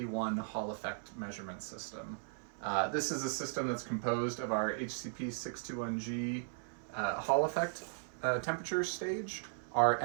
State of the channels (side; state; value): left; silent; 53 dB below the other